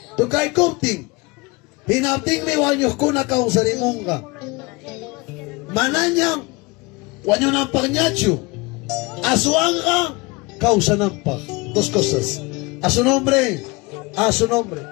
Tukay kupting. Hinapting mi wanyos kuna kausarimunga. Mananya. Wanyonan pagnacho. Asuanga. Causanampa. Dos cosas. A su nombre. A su nombre.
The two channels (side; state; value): right; quieter; 25.2 dB